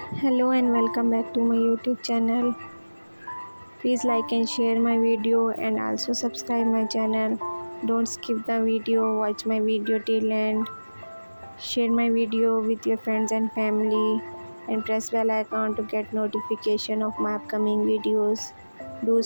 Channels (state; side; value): inverted; both; correlation -1.00